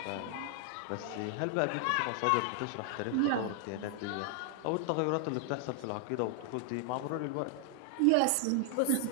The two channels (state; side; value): different; both; correlation 0.00